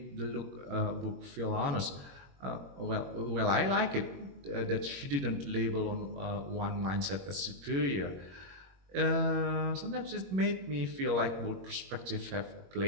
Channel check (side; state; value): left; late; 21 ms